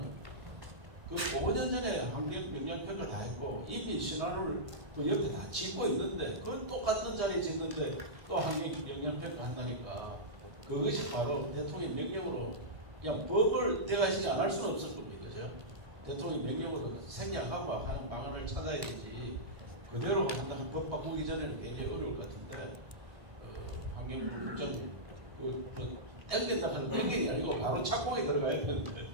5년 전에 환경 영향평가 다 했고 이미 신화를 그 옆에 다 짓고 있는데 그건 똑같은 자리에 짓는데 또 환경 영향평가 한다니까 그것이 바로 대통령 명령으로 그냥 법을 대가시지 안 할 수는 없을 겁니다. 그죠? 대통령 명령으로 생략하고 하는 방안을 찾아야 되지 그대로 한다면 법 바꾸기 전에는 굉장히 어려울 것 같은데 환경부 국장님 땡긴다 하는 땡긴이 아니고 바로 착공에 들어가야 되는데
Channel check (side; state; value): left; late; 1.5 ms